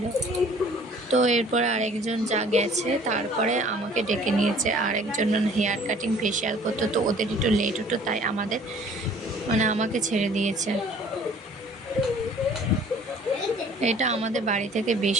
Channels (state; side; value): normal; both; correlation 0.52